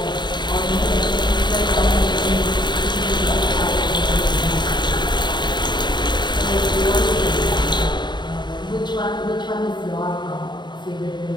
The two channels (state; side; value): late; right; 0.22 ms